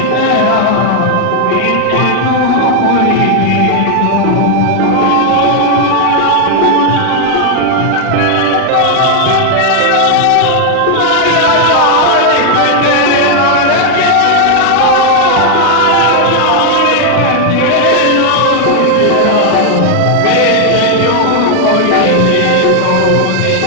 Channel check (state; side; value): different; both; correlation 0.00